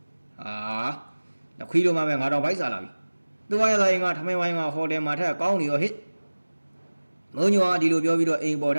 ခွေးတို့မှပဲငါတော့ဗိုက်စားလာပြီသူဝါရသားရင်ကထမင်းဝိုင်းကဟိုတယ်မှာထက်ကောင်းနေရောဟစ်မုံညိုကဒီလိုပြောပြီးတော့အိမ်ပေါ်ထ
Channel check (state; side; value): inverted; both; correlation -1.00